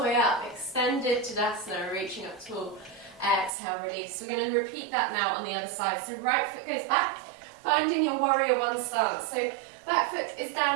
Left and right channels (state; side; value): drops out; left; at 3.5 s